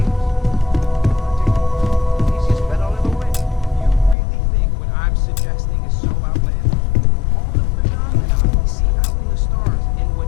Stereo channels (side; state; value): right; drops out; at 4.2 s